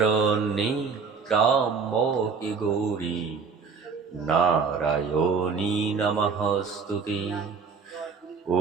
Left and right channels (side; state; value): left; quieter; 5.3 dB